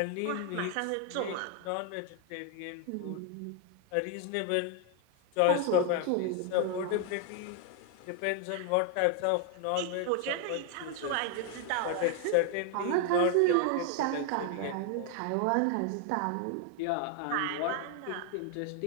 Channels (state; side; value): different; both; correlation 0.00